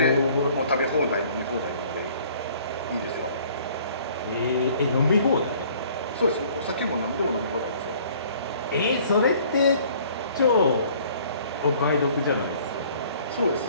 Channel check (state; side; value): inverted; both; correlation -0.55